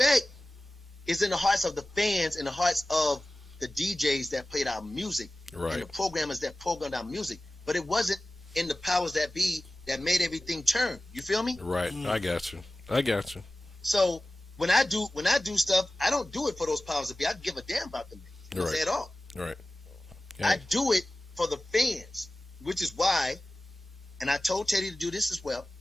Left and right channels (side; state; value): both; normal; correlation 0.96